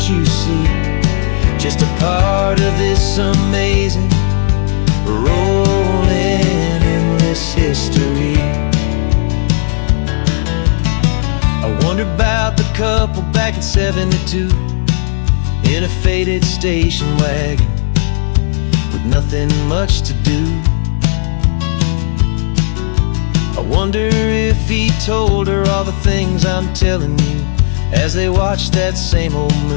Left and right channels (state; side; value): silent; right; digital silence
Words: you see, just a part of this amazing, rolling, endless history. I wonder about the couple back in '72 in a faded station wagon with nothing much to do. I wonder if he told her all the things I'm telling you as they watched that same old